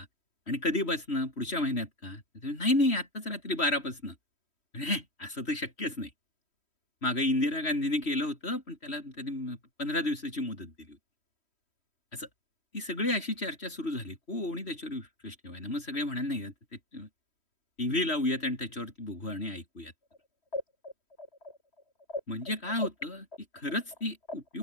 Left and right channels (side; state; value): right; late; 3.1 ms